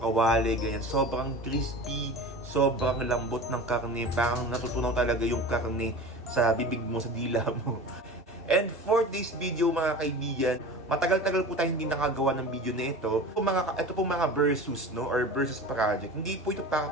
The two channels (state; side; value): normal; both; correlation 0.34